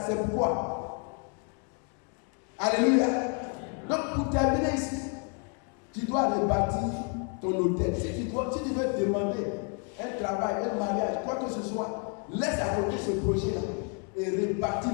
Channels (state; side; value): quieter; right; 37.4 dB